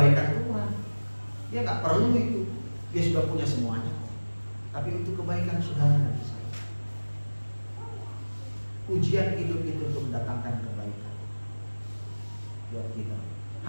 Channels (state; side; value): inverted; both; correlation -1.00